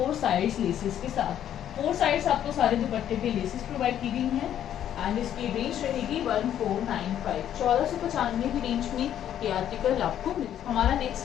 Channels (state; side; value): quieter; right; 10.6 dB